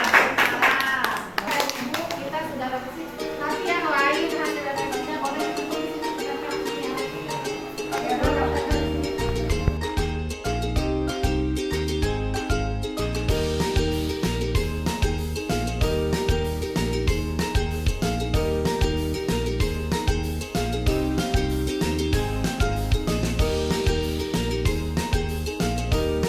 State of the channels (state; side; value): identical; both; correlation 1.00